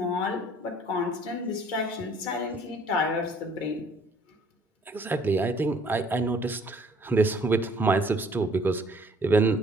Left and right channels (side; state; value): both; normal; correlation 0.58